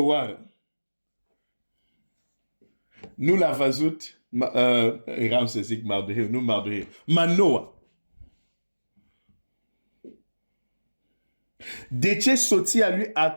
nu l-a văzut, eram să zic Mardoheu, nu Mardoheu, Manoa. De ce soția lui a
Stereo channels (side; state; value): both; inverted; correlation -1.00